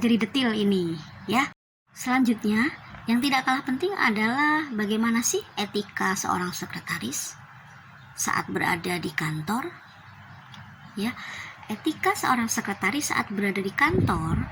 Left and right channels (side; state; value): both; identical; correlation 1.00